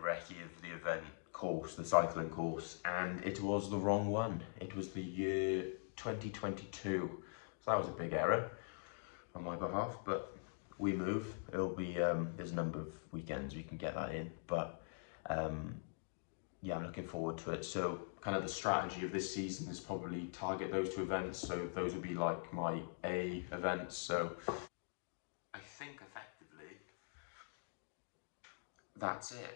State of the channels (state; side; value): silent; right; digital silence